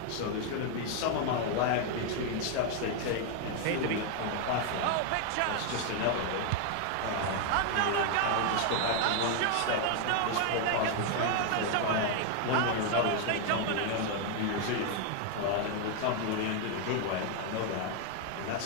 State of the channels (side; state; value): both; different; correlation 0.01